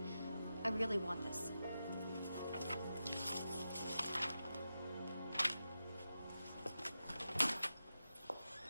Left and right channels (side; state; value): both; inverted; correlation -0.90